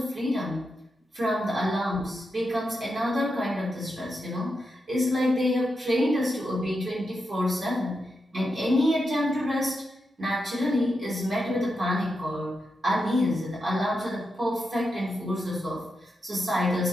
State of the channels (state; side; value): normal; both; correlation 0.87